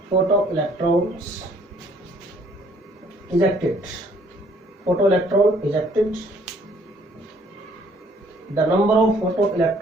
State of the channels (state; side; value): normal; both; correlation 0.61